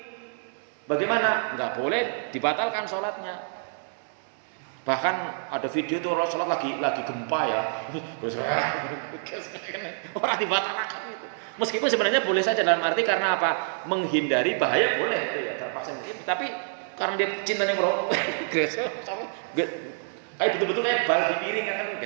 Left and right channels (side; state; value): left; silent; digital silence